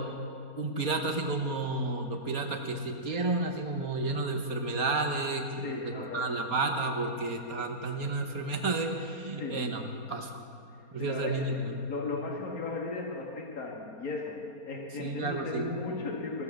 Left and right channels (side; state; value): right; late; 4.3 ms